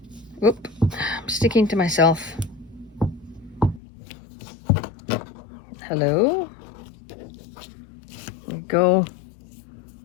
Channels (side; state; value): right; drops out; at 3.8 s